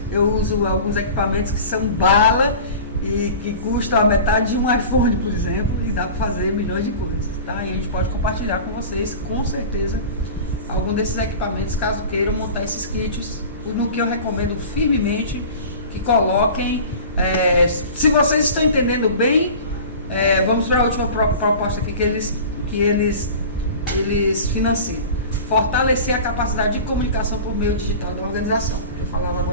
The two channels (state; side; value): inverted; both; correlation -0.37